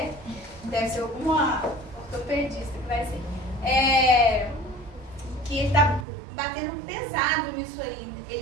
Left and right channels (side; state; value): left; drops out; at 6.1 s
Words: deve ser alguma ortopedista que vai ser. Que ele está batendo pesado nisso aí.